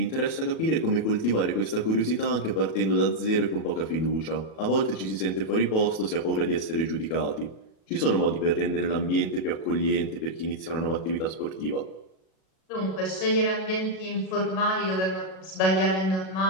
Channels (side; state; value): right; late; 37 ms